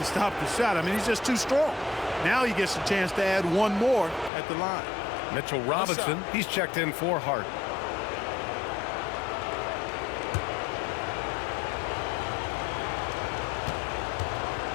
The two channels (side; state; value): right; drops out; at 4.3 s